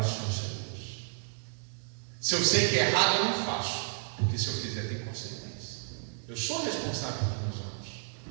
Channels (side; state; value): left; silent; digital silence